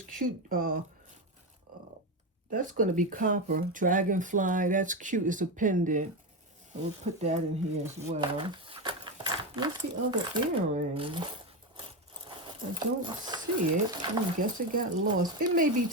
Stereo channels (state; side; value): normal; both; correlation 0.14